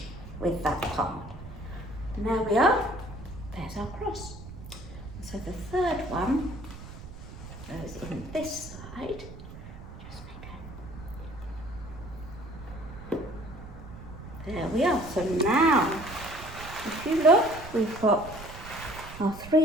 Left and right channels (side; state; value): right; noise; rumble, 14 dB below the sound